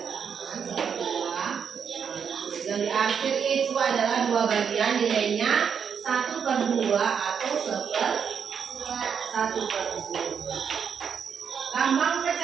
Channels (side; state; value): left; quieter; 7.0 dB